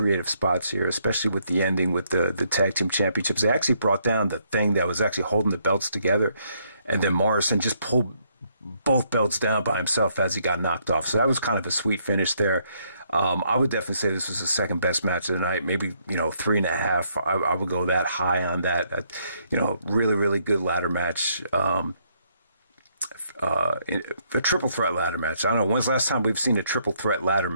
spots here, especially with the ending with the tag team championships. They actually brought down the thing that was actually holding the belts together, and then Morrison just pulled both belts down by himself as he got knocked off. So that was kind of a sweet finish there. I would definitely say this was the second best match of the night. Maybe, you know, 3.5. I would go that high on that. You know, really, really good ladder match. A triple threat ladder match. I don't know. When's the last time we've seen a triple threat ladder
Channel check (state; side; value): inverted; both; correlation -0.72